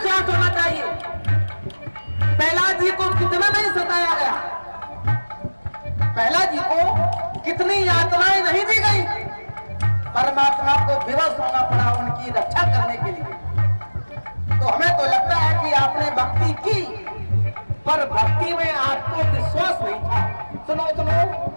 होना चाहिए। प्रहलाद जी को कितना नहीं सताया गया, प्रहलाद जी को कितनी यातनाएं नहीं दी गई, परमात्मा को विवश होना पड़ा उनकी रक्षा करने के लिए। तो हमें तो लगता है कि आपने भक्ति की पर भक्ति में आपको विश्वास नहीं था। सुनो सुनो,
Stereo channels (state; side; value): inverted; both; correlation -1.00